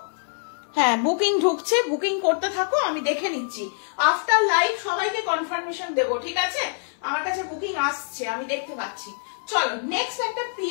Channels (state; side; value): silent; right; 62 dB below the other